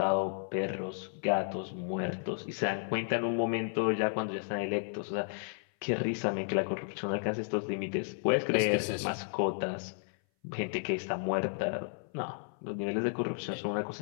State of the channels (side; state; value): right; silent; 56 dB below the other